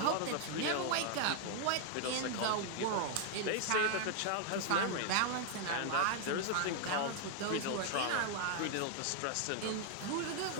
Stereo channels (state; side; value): different; both; correlation 0.00